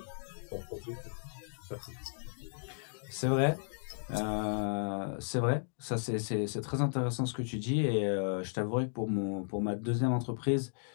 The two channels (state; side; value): silent; right; digital silence